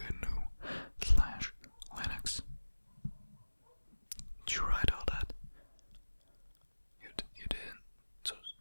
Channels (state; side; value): inverted; both; correlation -1.00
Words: Did you write all that? You didn't. So